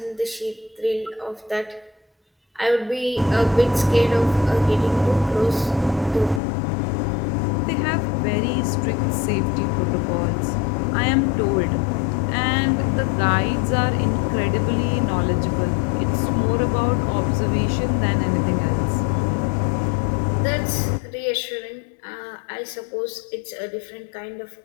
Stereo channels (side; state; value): right; drops out; at 6.4 s